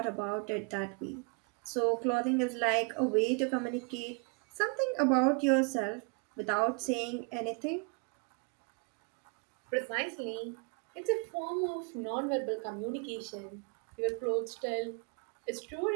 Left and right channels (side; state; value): left; quieter; 34.6 dB